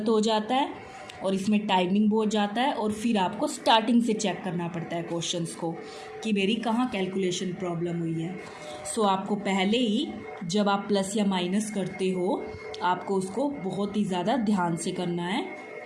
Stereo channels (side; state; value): both; identical; correlation 1.00